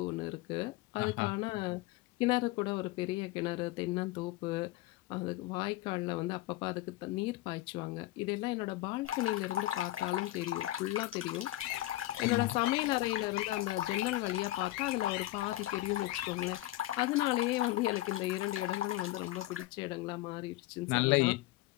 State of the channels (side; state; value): right; quieter; 17.0 dB